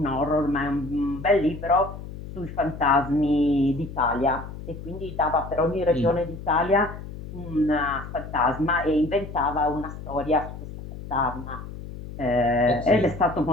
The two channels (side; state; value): left; noise; hum, 11 dB below the sound